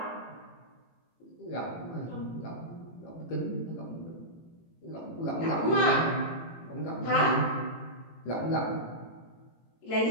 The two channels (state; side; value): late; right; 18 ms